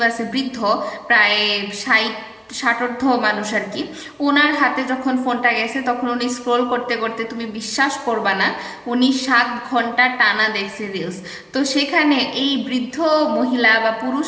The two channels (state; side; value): identical; both; correlation 1.00